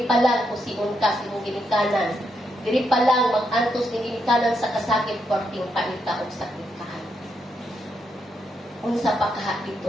pa lang kusiun ka sa imong ginikanan. Diri pa lang mag-antos ning ginikanan sa kasakit perting paita og sakit kahan. Unsa pa kaha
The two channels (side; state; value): both; normal; correlation 0.80